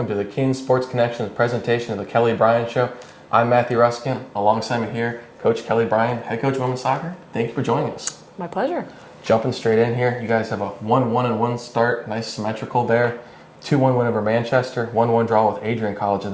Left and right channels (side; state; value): both; identical; correlation 1.00